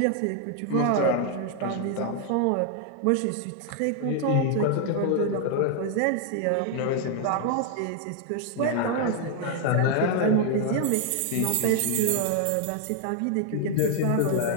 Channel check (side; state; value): both; different; correlation 0.00